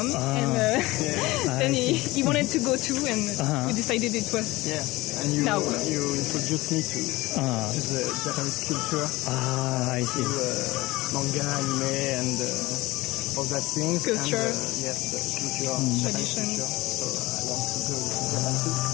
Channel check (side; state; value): right; quieter; 20.2 dB